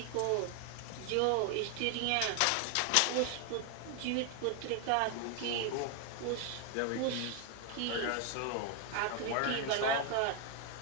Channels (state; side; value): different; both; correlation 0.01